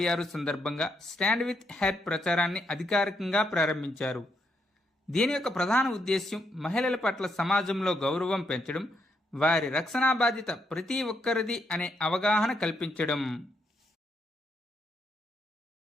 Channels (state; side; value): normal; both; correlation 0.78